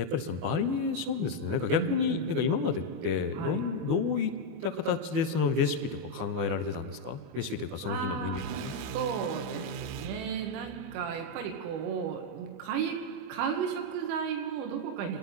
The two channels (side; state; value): left; late; 25 ms